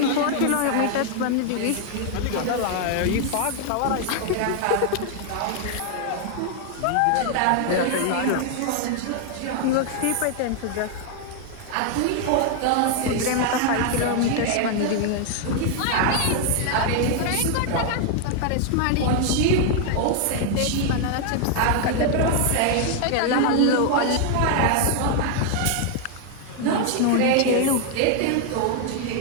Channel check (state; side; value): different; both; correlation 0.00